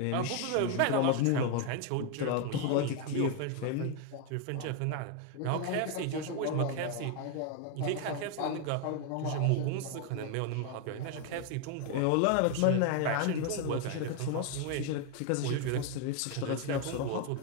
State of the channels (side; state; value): both; different; correlation 0.01